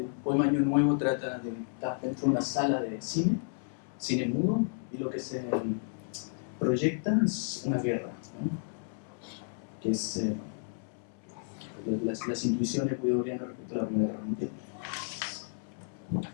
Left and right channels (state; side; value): silent; right; 56 dB below the other